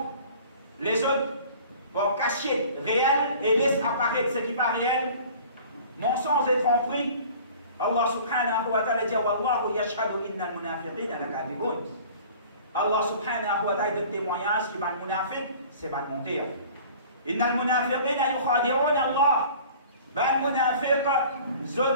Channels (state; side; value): inverted; both; correlation -0.46